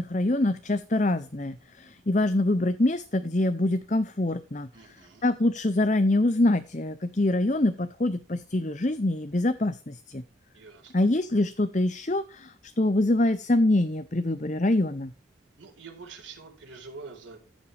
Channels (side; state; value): both; normal; correlation 0.75